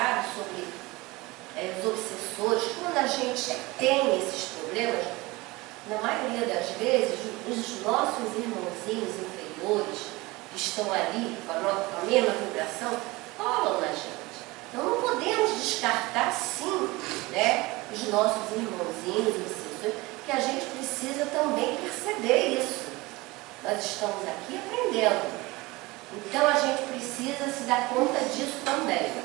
sobre os obsessores. Quando a gente tem esses problemas, na maioria das vezes, os nossos irmãozinhos inferiores, que estão ali com a mesma vibração, colam na gente. Então não podemos descartar, sim, né, os nossos irmãozinhos obsessores, que a gente precisa também perceber isso. Nós estamos aqui aprendendo. Então a gente precisa se dar conta disso também.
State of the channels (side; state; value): left; quieter; 22.1 dB